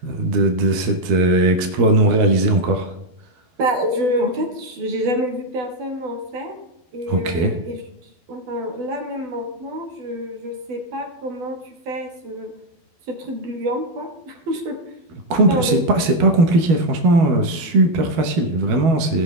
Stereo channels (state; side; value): late; left; 12 ms